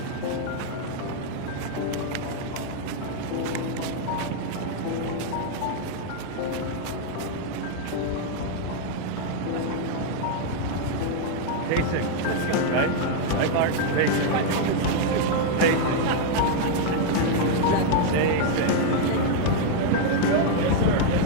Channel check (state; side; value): different; both; correlation 0.00